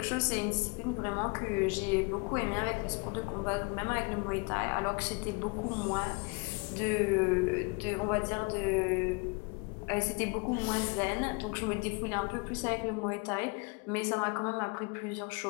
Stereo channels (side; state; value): right; quieter; 31.0 dB